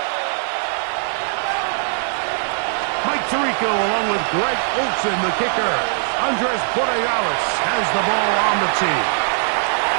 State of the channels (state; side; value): silent; left; 65 dB below the other